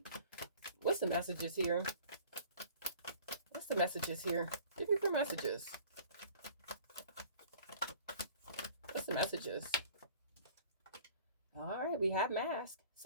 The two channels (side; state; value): both; inverted; correlation -0.48